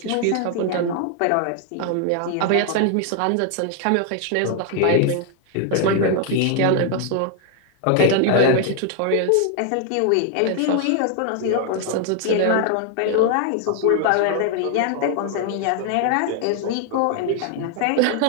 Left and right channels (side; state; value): both; different; correlation 0.00